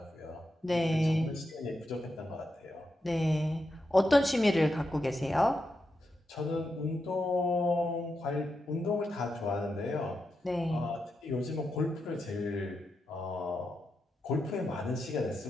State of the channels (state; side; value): normal; both; correlation 0.86